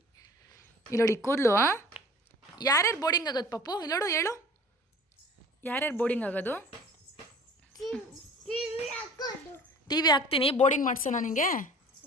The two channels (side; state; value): both; normal; correlation 0.46